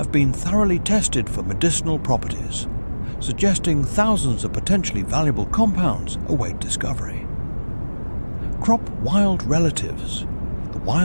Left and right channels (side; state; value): both; inverted; correlation -1.00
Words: been thoroughly tested for medicinal properties, suggesting thousands of potentially valuable compounds await discovery. Crop wild relatives, the